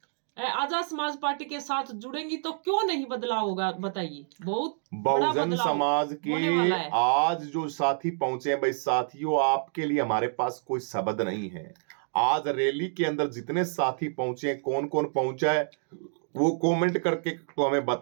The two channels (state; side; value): silent; left; digital silence